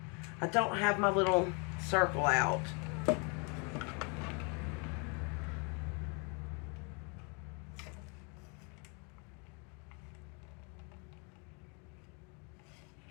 I don't have my little circle out.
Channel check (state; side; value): quieter; right; 34.3 dB